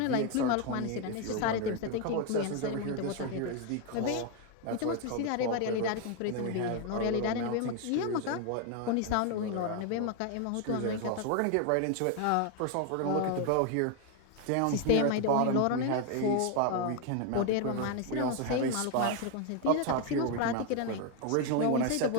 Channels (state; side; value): different; both; correlation 0.01